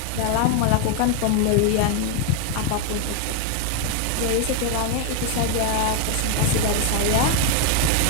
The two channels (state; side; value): different; both; correlation 0.01